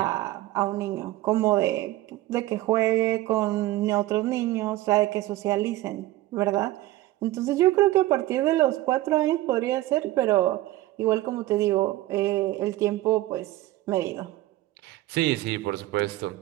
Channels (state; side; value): quieter; left; 16.7 dB